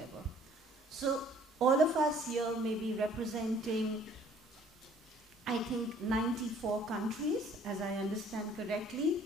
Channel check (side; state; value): both; normal; correlation 0.57